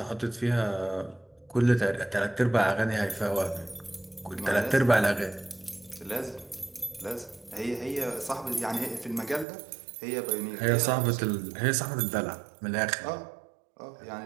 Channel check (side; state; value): left; drops out; at 9.5 s